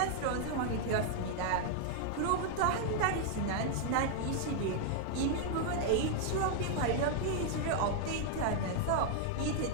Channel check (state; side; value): different; both; correlation 0.00